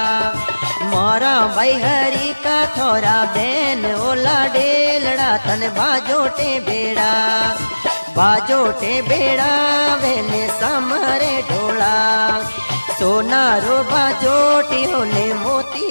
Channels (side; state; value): both; inverted; correlation -1.00